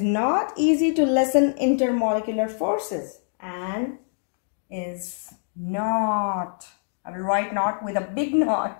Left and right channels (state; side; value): silent; right; digital silence